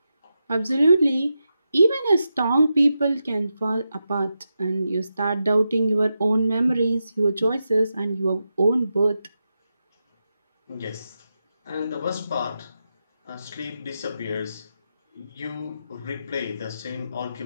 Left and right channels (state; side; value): inverted; both; correlation -0.88